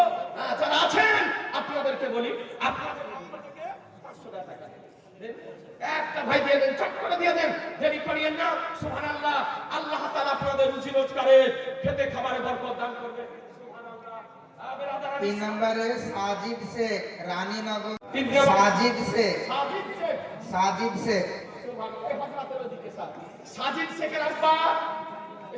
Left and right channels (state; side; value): identical; both; correlation 1.00